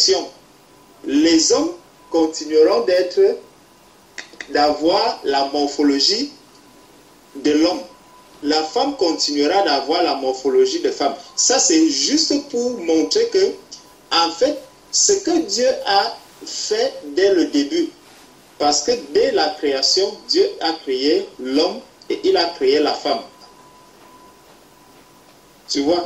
les hommes continueront d'avoir la morphologie de l'homme. La femme continuera d'avoir la morphologie de femme. Ça, c'est juste pour montrer que, en fait, ce que Dieu a fait dès le début, parce que dès la création, Dieu a créé l'homme et il a créé la femme. Tu vois,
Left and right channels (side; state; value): both; identical; correlation 1.00